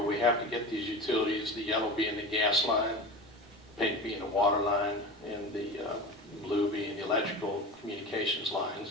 we have to get these utilities, the yellow being the gas line, pink being the water line, and the blue being the electrical communications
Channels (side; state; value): both; normal; correlation 0.30